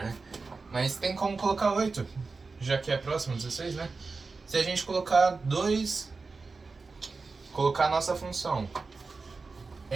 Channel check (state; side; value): quieter; left; 4.2 dB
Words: né? Mas tem como colocar 8, já que é próximo 16, né? Se a gente colocar 2... Colocar a nossa função...